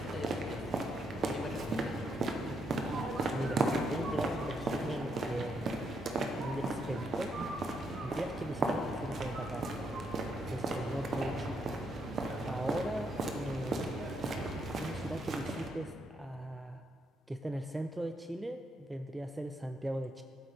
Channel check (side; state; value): both; normal; correlation 0.77